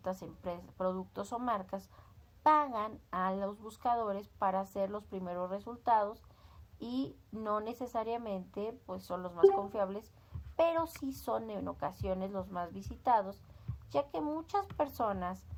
empresas, productos o marcas pagan a los buscadores para hacer los primeros resultados, y no necesariamente pues son los más confiables, pero sí son en ocasiones los más visitados, ya que muchas personas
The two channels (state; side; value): identical; both; correlation 1.00